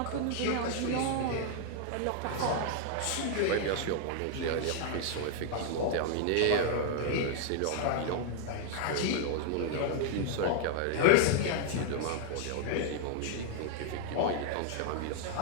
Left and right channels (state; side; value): different; both; correlation 0.00